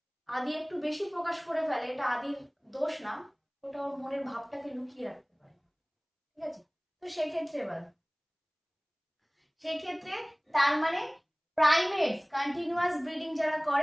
আদি একটু বেশি প্রকাশ করে ফেলে, এটা আদির দোষ না, ওটা ওর মনের ভাবটাকে লুকিয়ে রাখতে পারে। ঠিক আছে, তো সেক্ষেত্রে তার মানে প্রাইমেটস, কন্টিনিউয়াস ব্রিডিং যারা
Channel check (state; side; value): identical; both; correlation 1.00